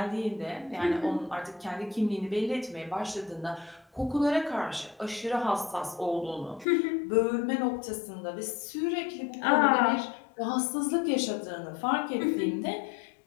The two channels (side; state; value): right; drops out; at 6.7 s